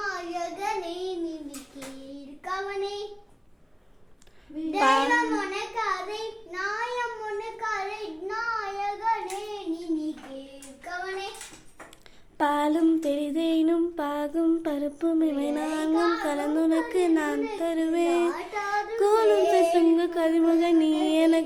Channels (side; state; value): both; identical; correlation 1.00